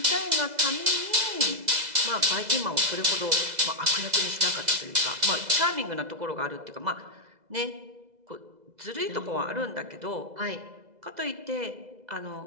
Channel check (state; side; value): late; left; 2.0 ms